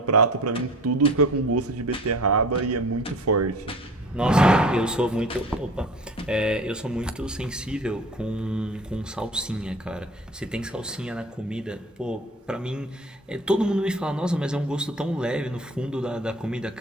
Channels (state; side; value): normal; both; correlation 0.42